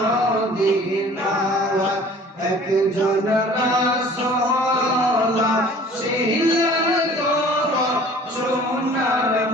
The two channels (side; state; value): both; normal; correlation 0.49